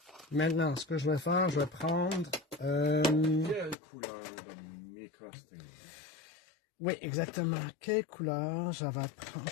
Maintenant, ce que je vais faire, je vais prendre... Quelle couleur de MicroStain? Oui, exactement. Quelle couleur? Je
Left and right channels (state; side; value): drops out; right; at 3.8 s